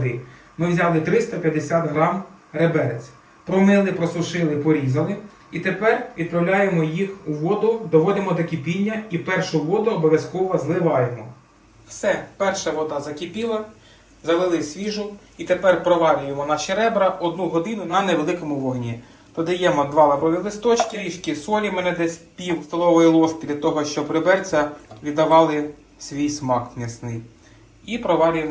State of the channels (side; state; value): both; identical; correlation 1.00